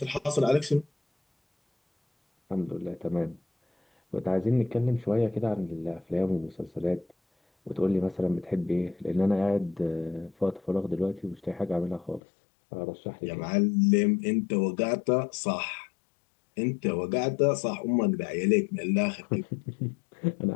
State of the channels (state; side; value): drops out; right; at 12.2 s